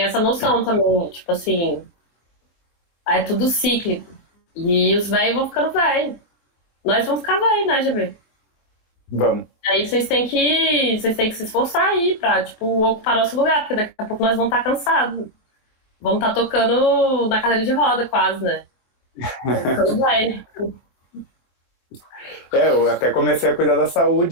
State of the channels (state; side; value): late; right; 23 ms